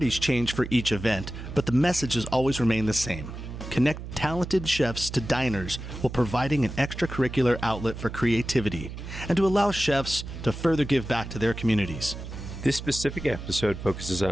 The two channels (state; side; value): noise; right; hum, 9 dB below the sound